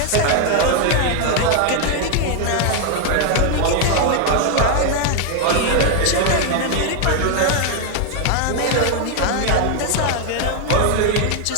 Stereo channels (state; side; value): different; both; correlation 0.00